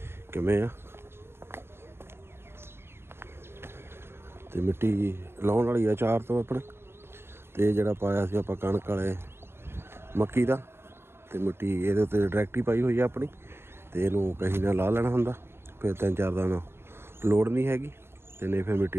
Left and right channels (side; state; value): left; late; 0.12 ms